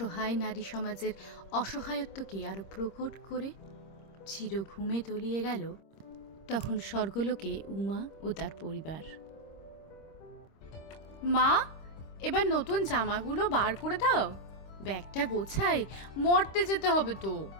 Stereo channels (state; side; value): late; right; 26 ms